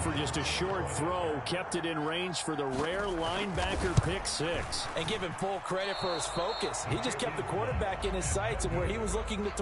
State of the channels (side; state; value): both; identical; correlation 1.00